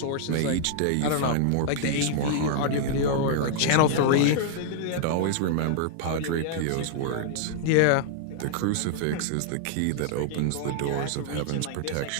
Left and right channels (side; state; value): both; different; correlation -0.01